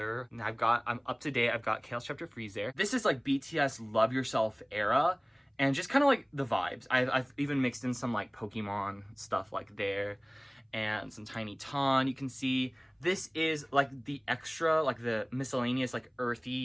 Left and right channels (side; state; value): both; identical; correlation 1.00